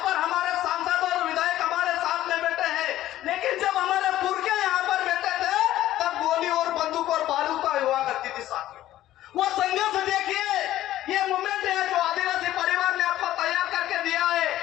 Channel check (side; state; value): right; quieter; 13.9 dB